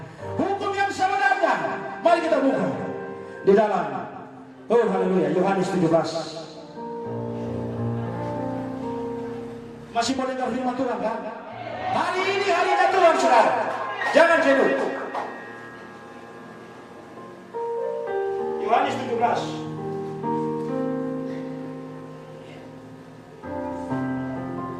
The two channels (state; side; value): identical; both; correlation 1.00